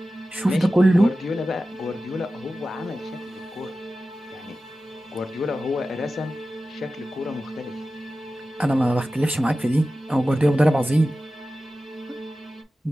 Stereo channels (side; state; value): both; normal; correlation 0.94